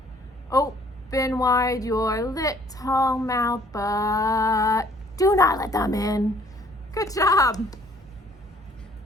Open wide your little mouth, but do not let them in. Good job.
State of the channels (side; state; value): both; normal; correlation 0.59